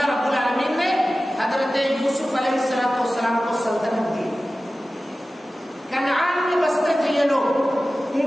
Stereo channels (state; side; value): normal; both; correlation 0.96